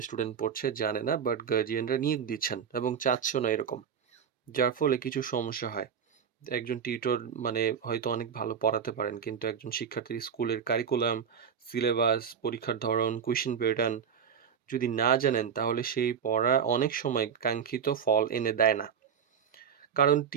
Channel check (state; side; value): quieter; left; 7.4 dB